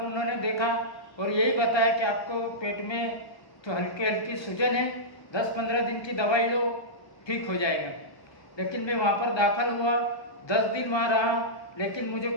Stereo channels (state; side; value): late; right; 1.2 ms